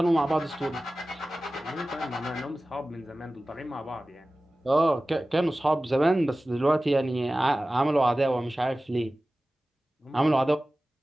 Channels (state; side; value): normal; both; correlation 0.96